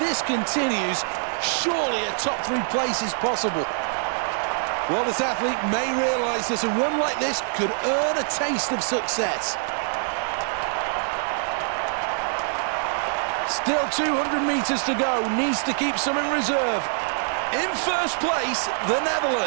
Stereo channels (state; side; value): silent; left; digital silence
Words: continues, surely a top 3 place is possible. Well, this athlete may realise that a run like this could earn a taste of success. Still 200 meters to go, needs to keep some in reserve. In first place, the